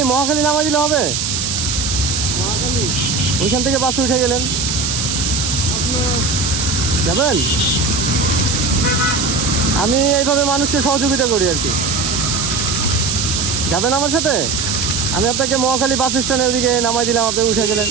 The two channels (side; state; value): right; noise; hiss, 1 dB below the sound